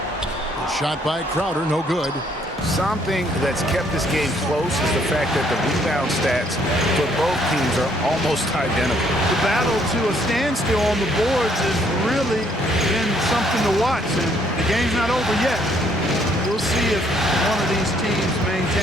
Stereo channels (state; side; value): normal; both; correlation 0.66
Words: shot by Crowder, no good. Something that's kept this game close is the fact that the rebound stats for both teams are almost identical. The battle to a standstill on the boards has really been something to watch, and the game's not over yet. We'll see if one of these teams